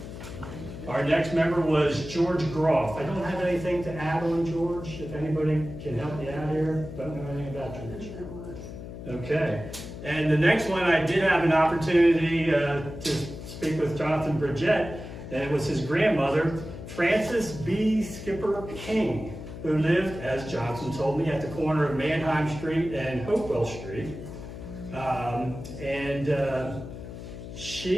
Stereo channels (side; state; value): left; noise; hum, 11 dB below the sound